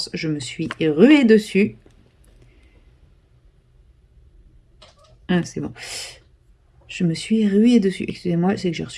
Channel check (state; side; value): identical; both; correlation 1.00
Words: je me suis ruée dessus. Ah, c'est bon. Je me suis ruée dessus. Excusez-moi, c'est que j'ai